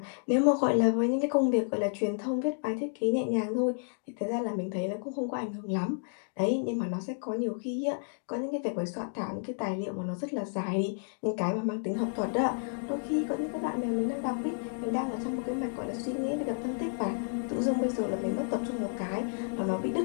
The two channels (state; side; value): silent; right; digital silence